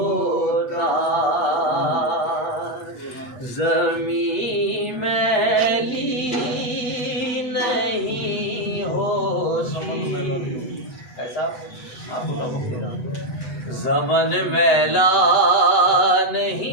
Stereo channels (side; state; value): right; late; 8.0 ms